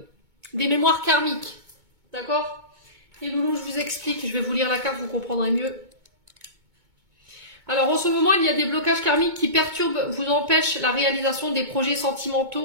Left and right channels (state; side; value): late; left; 2.2 ms